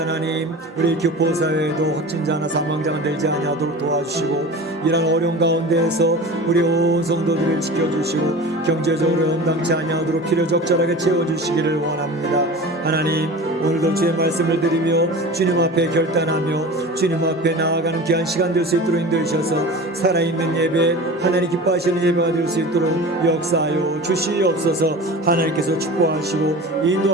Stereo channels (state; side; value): normal; both; correlation 0.35